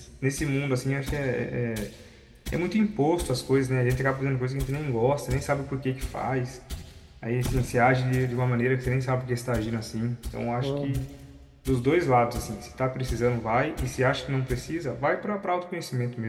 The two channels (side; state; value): both; identical; correlation 1.00